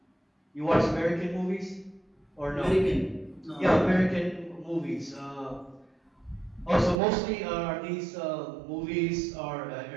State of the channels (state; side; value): drops out; left; at 7.0 s